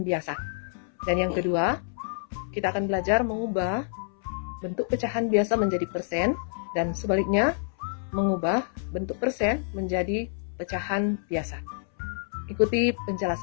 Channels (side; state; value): right; silent; 60 dB below the other